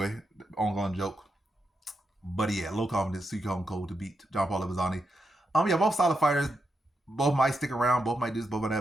ongoing joke. But yeah, low confidence, Seok Hyeon Ko to beat John Paul Lebosnoyani. Yeah, both solid fighters. Both might stick around. Both might do this, both of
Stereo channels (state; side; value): normal; both; correlation 0.85